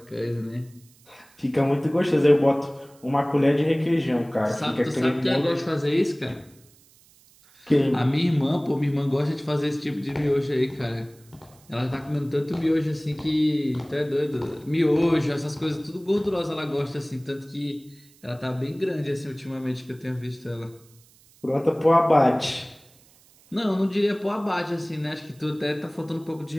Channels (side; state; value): right; noise; hiss, 29 dB below the sound